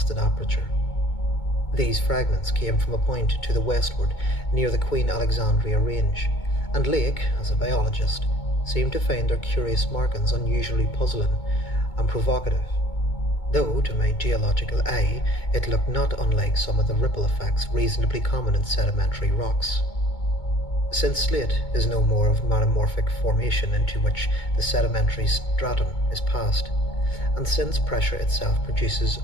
aperture. These fragments came from a point to the westward near the Queen Alexandria Range, and Lake, as a biologist, seemed to find their curious markings unusually puzzling and provocative, though to my geological eye it looked not unlike some of the ripple effects reasonably common in sedimentary rocks. Since slate is no more of metamorphic formation into which the sedimentary stratum is passed, and since pressure itself produces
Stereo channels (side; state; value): right; late; 2.2 ms